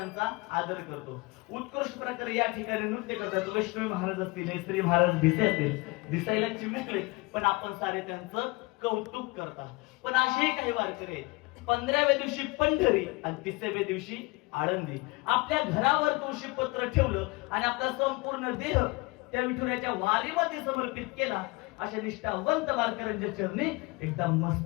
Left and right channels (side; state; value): right; quieter; 25.1 dB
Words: आदर करतो. उत्कृष्ट प्रकारे या ठिकाणी नृत्य करतात. लक्ष्मी महाराज असतील, श्री महाराज भिसे असतील, दिसायला चिमुकले पण आपण सारे त्यांचं कौतुक करतात. पण असे काही वारकरी आहेत, 15व्या दिवशी पंढरी आणि 30व्या दिवशी आळंदी. आपल्या घरावर तुळशी पत्र ठेवलं आणि आपला संपूर्ण देह त्या विठुरायाच्या वारीमध्ये समर्पित केला. अशा निष्ठावंत वारकऱ्यांच्या चरणी एकदा